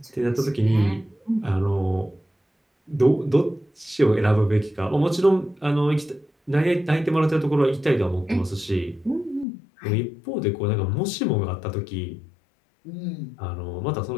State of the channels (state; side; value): drops out; right; at 9.5 s